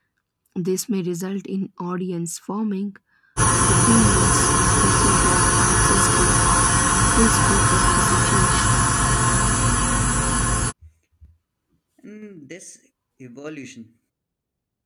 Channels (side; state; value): both; identical; correlation 1.00